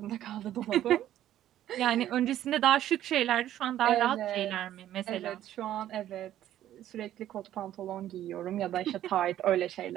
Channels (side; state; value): left; quieter; 12.3 dB